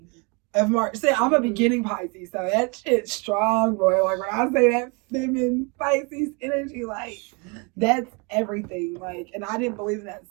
Of March. See, I'm a beginning Pisces, so that shit's strong, boy. Like when I say that feminine Pisces energy, like that's everything. Like, and I didn't believe in that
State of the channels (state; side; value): quieter; left; 31.4 dB